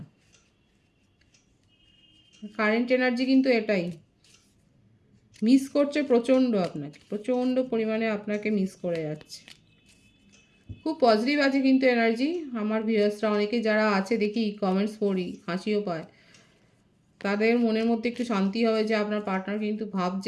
কারেন্ট এনার্জি কিন্তু এটাই মিস করছে প্রচণ্ড, আপনাকে প্রচণ্ড পরিমাণে আপনাকে মিস করে যাচ্ছে। খুব পজিটিভ আছে কিন্তু এনার্জি। আমার ভিউয়ার্সরা অনেকে যারা আছে দেখি কমেন্টস পড়ি, হাসিও পায়, তাদের মনের মধ্যে একটু শান্তি হবে যে আপনার পার্টনার কিন্তু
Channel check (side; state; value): both; identical; correlation 1.00